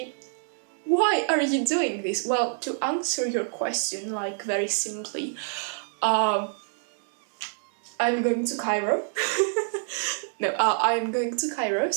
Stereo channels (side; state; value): left; silent; digital silence